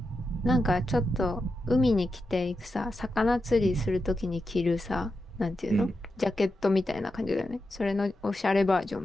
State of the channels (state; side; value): normal; both; correlation 0.89